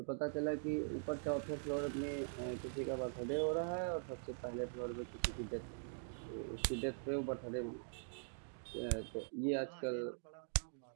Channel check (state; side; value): silent; left; digital silence